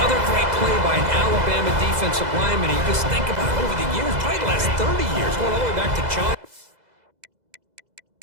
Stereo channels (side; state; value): left; late; 2.0 ms